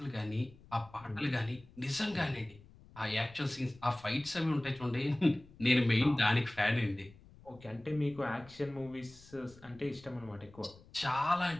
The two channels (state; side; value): noise; left; rumble, 23 dB below the sound